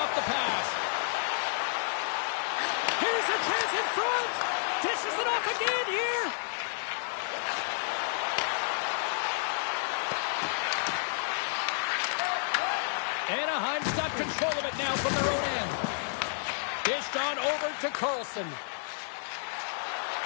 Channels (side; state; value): right; silent; 57 dB below the other